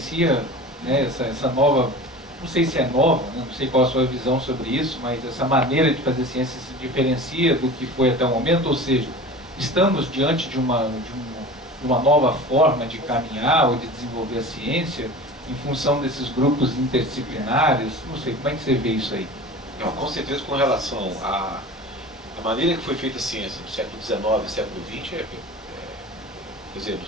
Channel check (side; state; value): both; normal; correlation 0.36